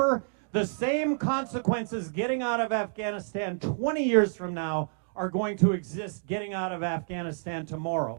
The same consequences getting out of Afghanistan 20 years from now are going to exist getting out of Afghanistan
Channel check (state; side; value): silent; left; digital silence